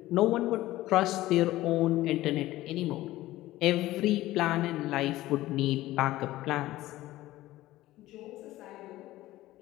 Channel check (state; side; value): quieter; right; 16.3 dB